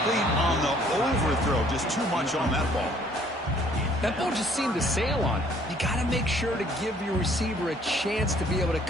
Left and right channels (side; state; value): both; normal; correlation 0.59